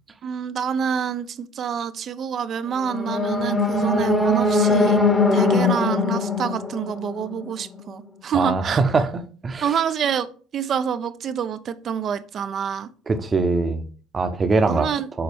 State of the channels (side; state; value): both; normal; correlation 0.56